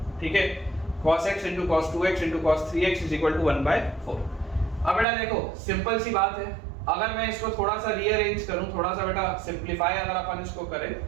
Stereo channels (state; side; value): drops out; left; at 5.1 s